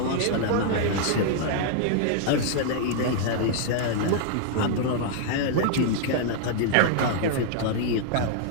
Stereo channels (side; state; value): both; different; correlation 0.00